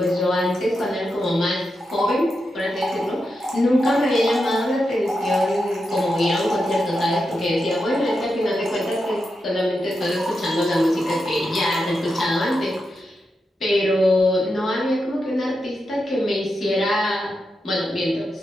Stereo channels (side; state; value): both; normal; correlation 0.87